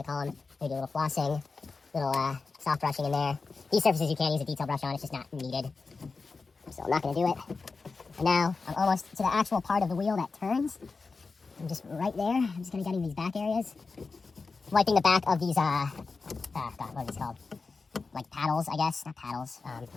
to call them. Maybe a little flossing, little soft brushing in there. These surfaces you can't use a detail brush on, it's just not needed. So I'm not going to do it. And now I'm almost to the actual part of the wheel that turns. I'm just right there. I'm just going to get in these back areas. Wiping the back of these, God, what are these called? Like paddles, I guess. Not paddles. I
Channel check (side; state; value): right; quieter; 4.3 dB